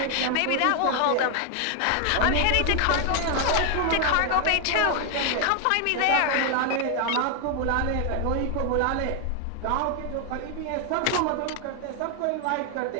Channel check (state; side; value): different; both; correlation 0.00